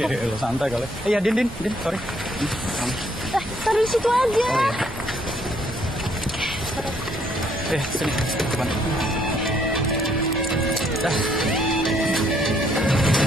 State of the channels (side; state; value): both; normal; correlation 0.68